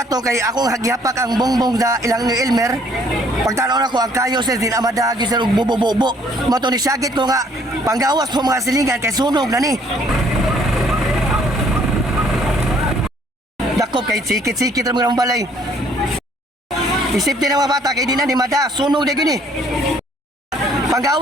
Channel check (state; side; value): normal; both; correlation 0.62